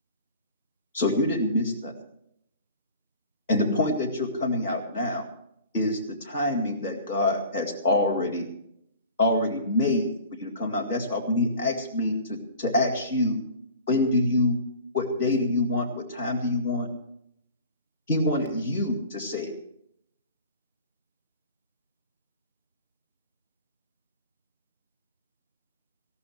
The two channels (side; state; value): both; inverted; correlation -0.41